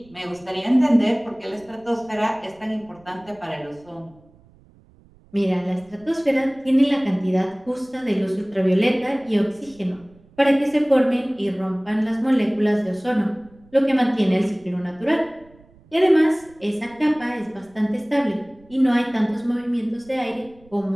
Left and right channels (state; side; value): noise; right; rumble, 28 dB below the sound